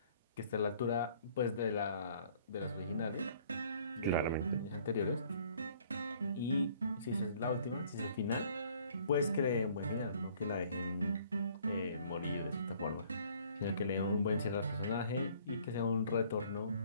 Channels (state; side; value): inverted; both; correlation -0.58